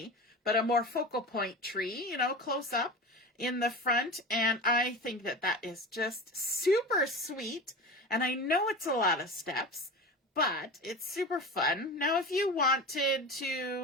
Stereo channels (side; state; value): both; normal; correlation 0.30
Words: but a more focal point tree, you know, close up in the front. And I think that that is just super sweet. And I know it's a lot of steps, but it's super fun. Now, if you wanted